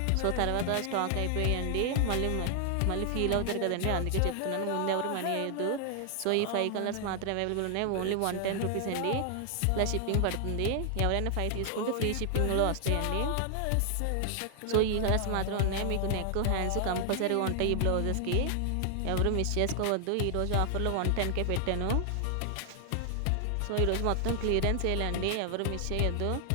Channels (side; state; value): both; different; correlation 0.00